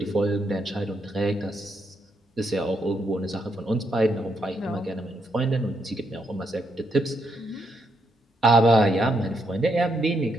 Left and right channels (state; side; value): normal; both; correlation 0.78